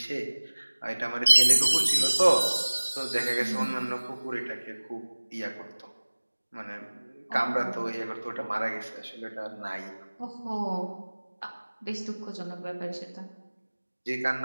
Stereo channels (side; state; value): both; inverted; correlation -1.00